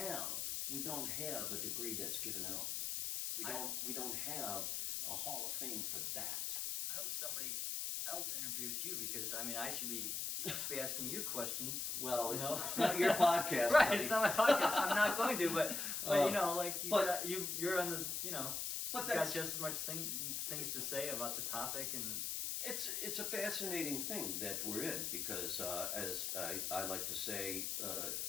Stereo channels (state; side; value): noise; left; hiss, 1 dB below the sound